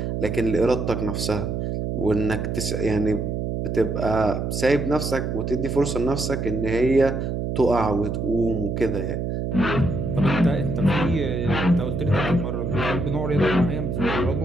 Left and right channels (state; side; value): noise; right; hum, 2 dB below the sound